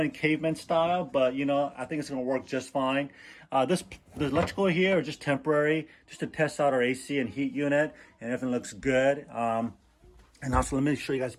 caveman style, but I think it's gonna work just fine. The electrical here is just temporary, just to test out our AC and heat unit, and everything looks good. And also let me show you guys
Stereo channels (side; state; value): both; identical; correlation 1.00